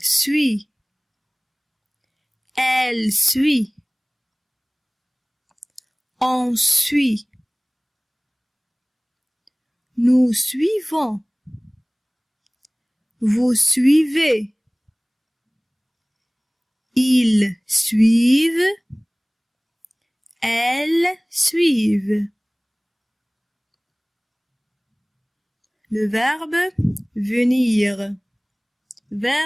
suit. Elle suit. On suit. Nous suivons. Vous suivez. Ils suivent. Elles suivent. Le verbe venir.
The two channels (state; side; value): identical; both; correlation 1.00